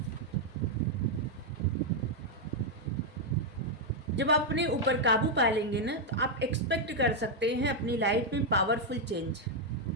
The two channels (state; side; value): normal; both; correlation -0.01